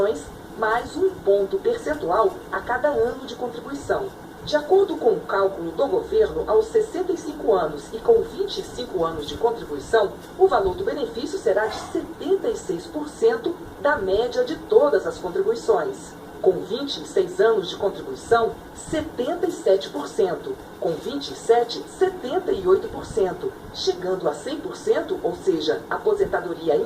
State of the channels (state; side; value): identical; both; correlation 1.00